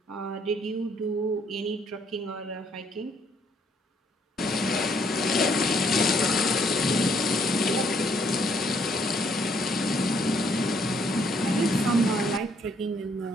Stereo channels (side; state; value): both; normal; correlation 0.68